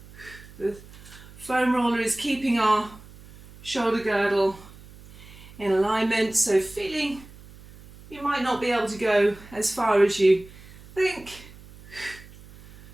The foam roller is keeping our shoulder girdle in alignment, so feeling you might not be able to go as far as you think.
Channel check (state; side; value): noise; right; hum, 20 dB below the sound